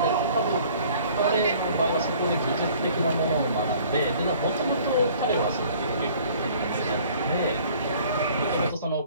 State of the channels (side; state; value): both; inverted; correlation -0.53